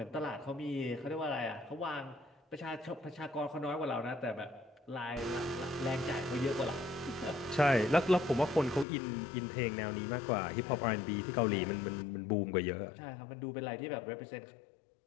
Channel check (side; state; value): right; drops out; at 8.8 s